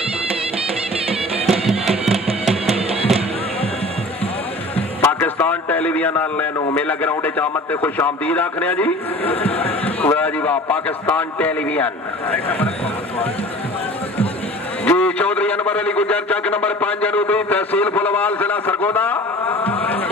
पाकिस्तान टेलीविजन वाले मेला ग्राउंड आमद से खुश आमदीद आखने जी। वाह जी वाह। पाकिस्तान टेलीविजन जी। चौधरी अनवर अली गुजर चक नंबर 5 जनूबी तहसील फुलवाल जिला सरगोदा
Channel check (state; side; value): normal; both; correlation 0.43